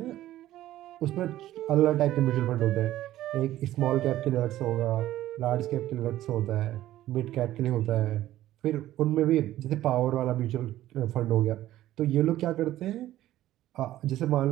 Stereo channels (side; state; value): left; quieter; 14.2 dB